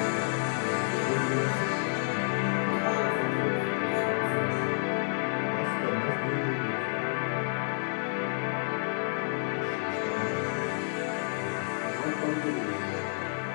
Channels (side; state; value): right; silent; digital silence